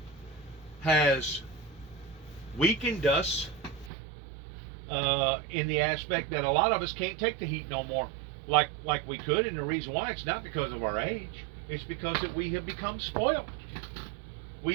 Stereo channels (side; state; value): left; drops out; at 3.9 s